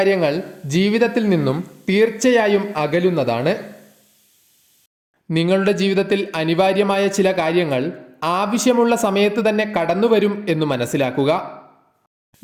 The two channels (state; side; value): identical; both; correlation 1.00